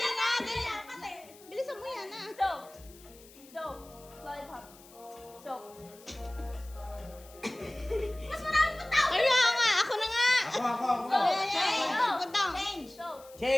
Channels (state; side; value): noise; left; hiss, 23 dB below the sound